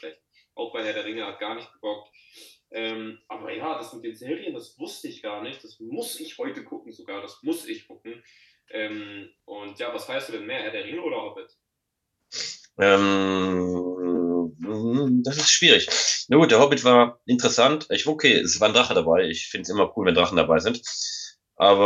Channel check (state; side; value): identical; both; correlation 1.00